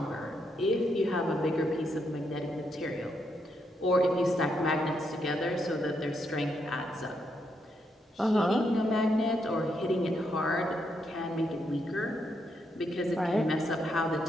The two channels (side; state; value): both; normal; correlation 0.79